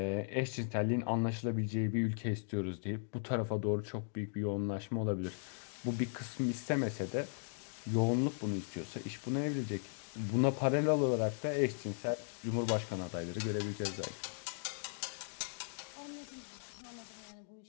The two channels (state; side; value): silent; right; digital silence